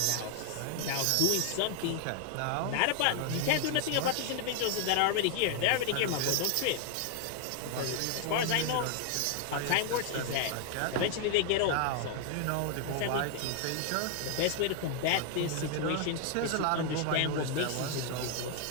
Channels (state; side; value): different; both; correlation 0.00